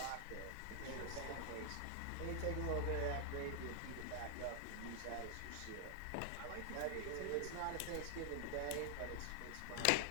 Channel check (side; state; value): both; different; correlation 0.00